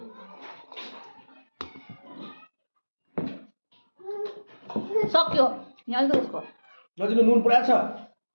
सक्यो यहाँ अलिकति यसको नजिक नुन पुरा छ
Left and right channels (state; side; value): inverted; both; correlation -1.00